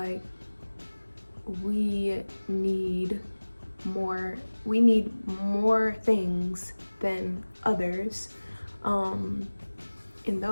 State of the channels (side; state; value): both; inverted; correlation -1.00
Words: we need more things than others, and